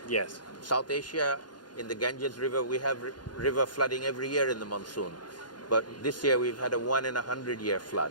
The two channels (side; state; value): right; late; 0.70 ms